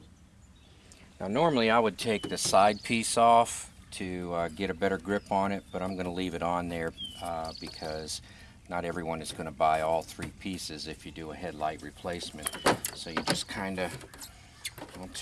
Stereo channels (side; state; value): both; identical; correlation 1.00